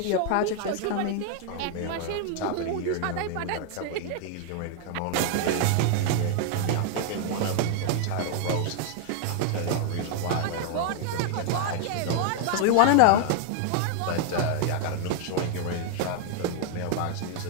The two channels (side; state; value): both; different; correlation 0.00